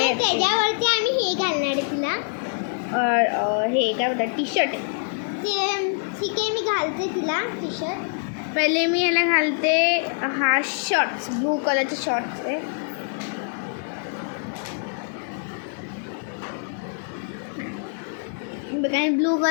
त्याच्यावरती आम्ही हे घालणार आहे तिला. हे काय बोलतात, टी शर्ट. ते ठीक आहे, मी घालते तिला टी शर्ट. पहिले मी ह्याला घालते हा शॉर्ट्स, ब्लू कलरचे शॉर्ट्स आहे. ब्लू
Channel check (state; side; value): silent; right; 62 dB below the other